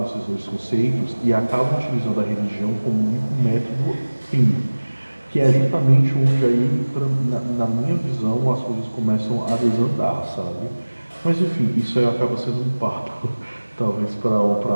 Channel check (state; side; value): inverted; both; correlation -1.00